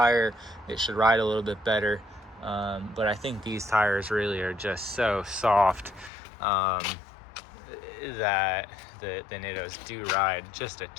it should ride a little bit better. But I think these tires really are just so soft that the Nittos do ride just a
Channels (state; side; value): drops out; right; at 6.1 s